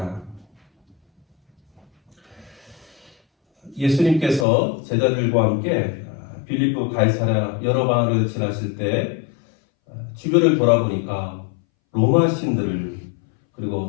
예수님께서 제자들과 함께 빌립보 가이사랴 여러 방을 지나실 때 주변을 돌아보니까 로마 신들을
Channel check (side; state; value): right; drops out; at 4.5 s